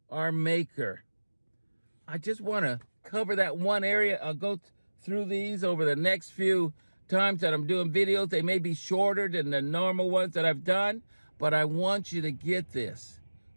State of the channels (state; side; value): inverted; both; correlation -1.00